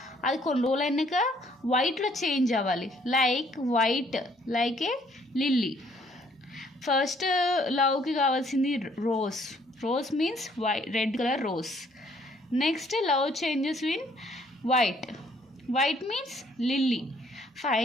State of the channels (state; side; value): normal; both; correlation 0.64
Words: అది కొన్ని రోజులు అయినాక వైట్లో చేంజ్ అవ్వాలి, white like a lily. First లవ్కి కావాల్సింది rose means red colour rose. Next love changes in white means lily.